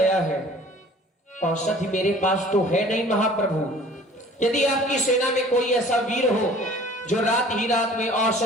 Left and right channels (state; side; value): normal; both; correlation 0.50